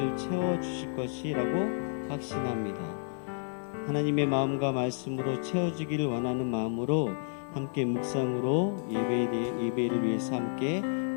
채워주실 것이라고 확신합니다. 하나님의 마음과 말씀으로 채워주기를 원하는 마음으로 함께 묵상으로 예배를 위해서 함께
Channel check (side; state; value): right; silent; digital silence